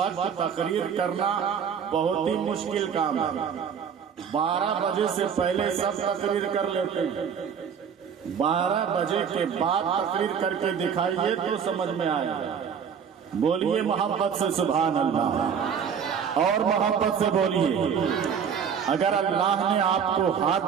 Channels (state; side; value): quieter; left; 7.3 dB